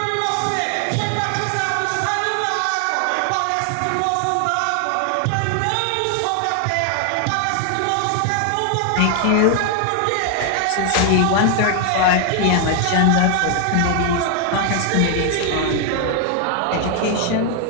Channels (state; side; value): different; both; correlation 0.00